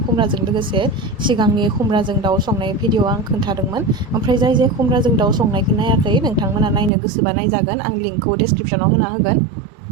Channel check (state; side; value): drops out; left; at 6.9 s